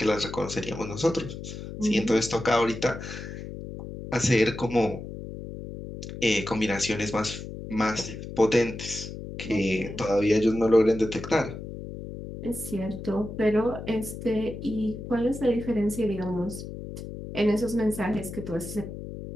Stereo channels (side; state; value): left; noise; hum, 10 dB below the sound